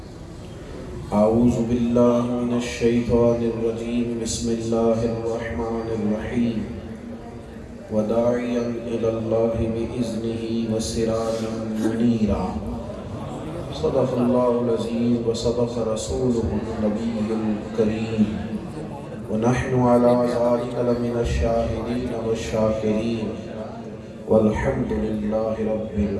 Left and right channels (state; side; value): identical; both; correlation 1.00